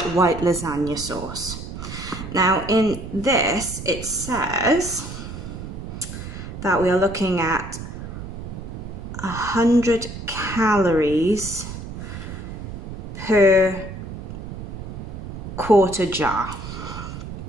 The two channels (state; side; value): noise; right; rumble, 9 dB below the sound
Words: white lasagna sauce. Now in this, it says that we are looking at 100 calories per quarter jar.